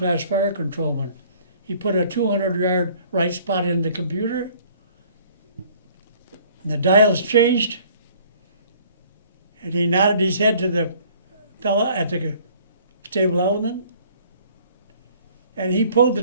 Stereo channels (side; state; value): both; inverted; correlation -0.55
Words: fire controlman. He put a 200-yard right spot in the computer. And the dials changed, and he nodded his head to the fella at the stable element, and he pulled the